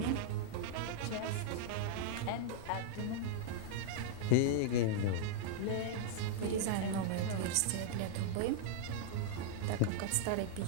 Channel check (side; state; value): both; different; correlation -0.01